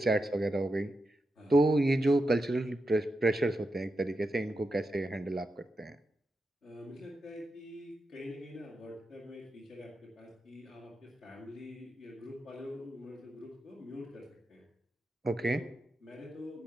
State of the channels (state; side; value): normal; both; correlation 0.88